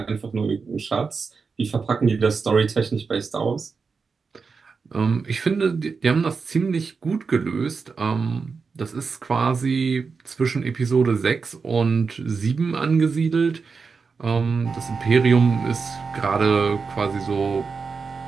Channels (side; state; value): left; quieter; 5.0 dB